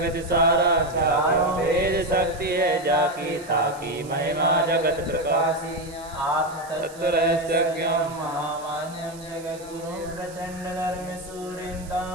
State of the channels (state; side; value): noise; right; hiss, 20 dB below the sound